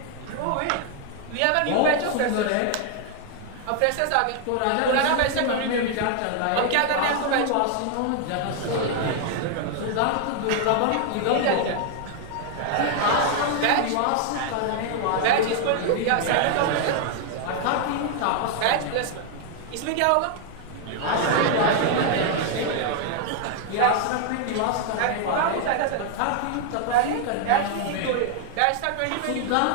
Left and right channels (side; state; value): both; different; correlation 0.00